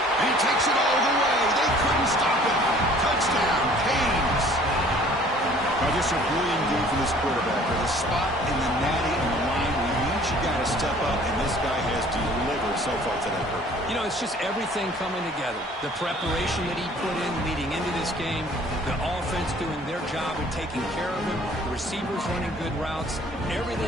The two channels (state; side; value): normal; both; correlation 0.53